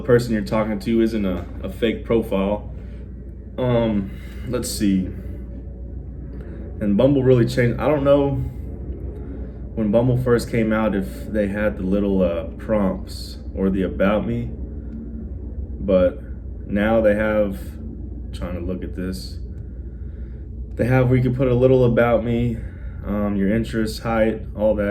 person you're talking to isn't a fake profile. Let's see. And Bumble really changed. I don't know when Bumble first came out if they had the little prompts or the about me, but now they have, trying to look at this, they have where you can put a little about me, your interests, height, all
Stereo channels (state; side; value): identical; both; correlation 1.00